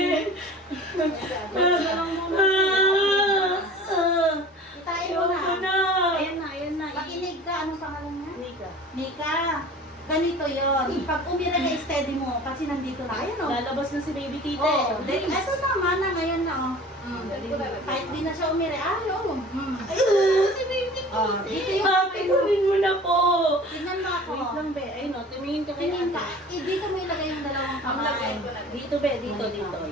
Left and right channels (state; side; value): normal; both; correlation 0.42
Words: Tayo Ako na. na! Ayan na. Makinig ka. Anong pangalan niya? Nika. Nika. Ganito yon. Pag umira na steady mo, kasi nandito na. Ayan o. Lalabas na si baby tite. Oh, ito naman na ngayon na oh. Kahit di na siya umira. Ay, oh. Si baby Oh, dito yung Ate, kunin mo na po! tingnan mo ako. Wait lang, be. Ayun o, tumingin ka kay Tingin ka. ate. Dito mo ilagay yung dalawang kamay. Dito, be. Dito, dito.